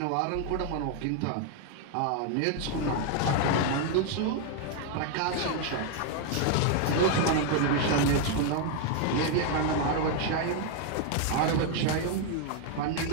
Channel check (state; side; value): different; both; correlation 0.00